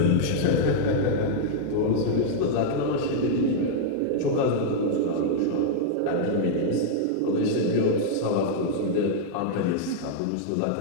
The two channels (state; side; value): different; both; correlation -0.01